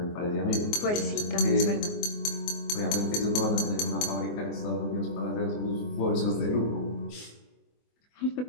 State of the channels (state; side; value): late; right; 24 ms